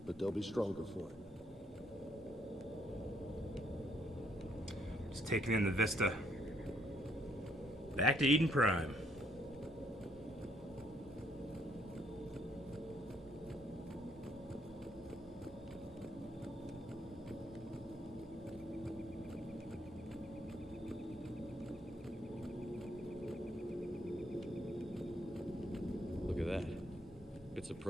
But they'll be stronger for it. Just taking in the vista. Back to Eden Prime. Look at that. Bits of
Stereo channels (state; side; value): normal; both; correlation 0.69